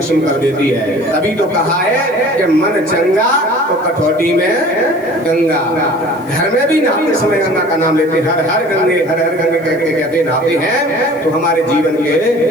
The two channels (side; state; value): left; noise; hiss, 28 dB below the sound